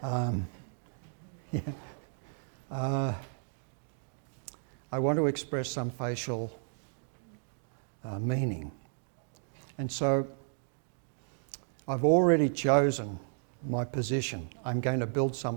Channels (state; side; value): silent; left; digital silence